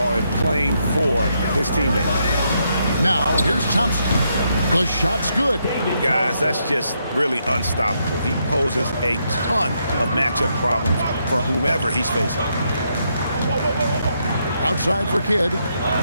and playing for his teammates. Now, here's Thompson. The shot's good. Guys, that's just really unstoppable. He poses a ton of matchup problems for whomever he's facing. Outside for Kidd.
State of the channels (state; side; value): inverted; both; correlation -0.78